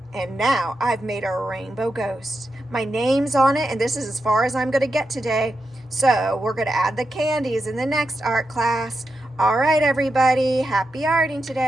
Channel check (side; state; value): both; normal; correlation 0.88